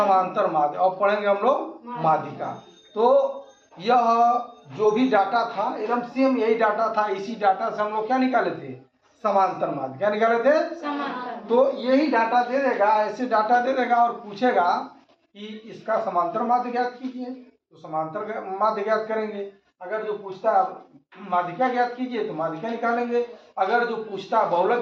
माध्य। अब पढ़ेंगे हम लोग माध्यिका। तो यह जो भी डाटा था एकदम सेम यही डाटा था। इसी डाटा से हम लोग क्या निकाले थे? समांतर माध्य। क्या निकाले थे? समांतर। तो यही डाटा दे देगा, ऐसे डाटा दे देगा और पूछेगा कि इसका समांतर माध्य ज्ञात कीजिए, तो समांतर माध्य ज्ञात करेंगे। अगर जो पूछता माध्यिका ज्ञात कीजिए तो माध्यिका निकालेंगे। अगर जो पूछता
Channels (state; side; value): identical; both; correlation 1.00